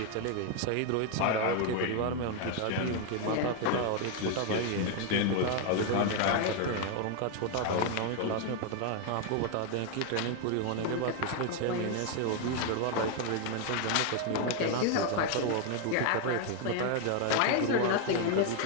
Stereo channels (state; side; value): different; both; correlation 0.01